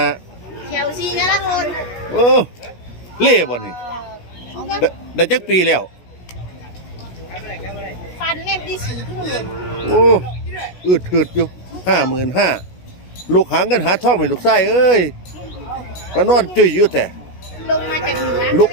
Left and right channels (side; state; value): right; late; 16 ms